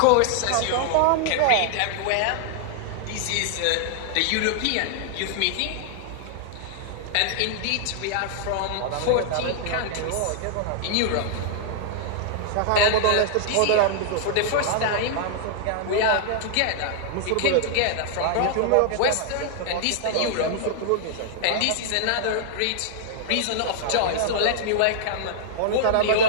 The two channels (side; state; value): both; different; correlation -0.01